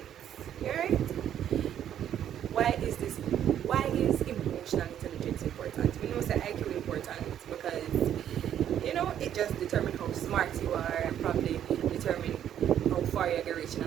Alright? Why is emotional intelligence important? We know that IQ important because it just determines how smart you are and probably determine how far you're going to reach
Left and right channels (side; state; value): left; quieter; 10.2 dB